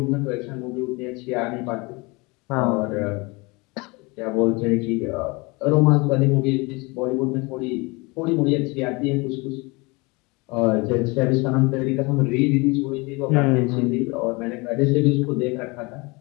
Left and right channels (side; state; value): right; quieter; 26.4 dB